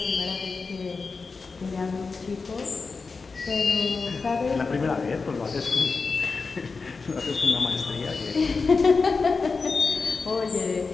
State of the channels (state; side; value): quieter; right; 4.5 dB